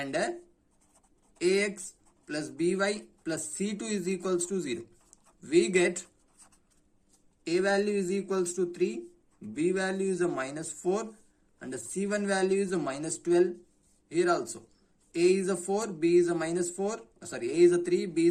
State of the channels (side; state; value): both; identical; correlation 1.00